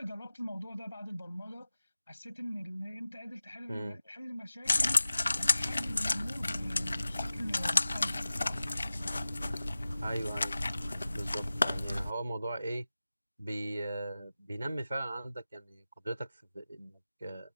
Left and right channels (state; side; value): inverted; both; correlation -0.96